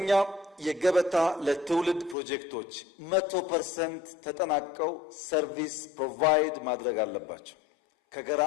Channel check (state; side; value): drops out; right; at 2.1 s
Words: የገበታ ለትውልድ ፕሮጀክቶች 100% ተጠናቀው ሰርቪስ ፕሮቫይድ ማድረግ አለባቸው። ከገራ